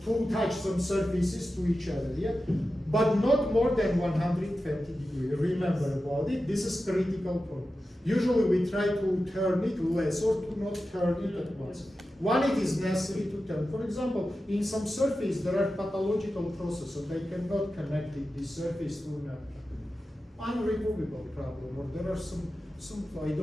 to touch some surfaces to each other, yeah? But not more than 120 degrees. Remember about it, this is critical point. Usually we try to turn it less or to not turn it at once. When it is necessary to turn. For example, in some surface there are pathological processes, they cannot connect this surface to an unremovable problem, or there are some I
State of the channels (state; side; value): normal; both; correlation 0.92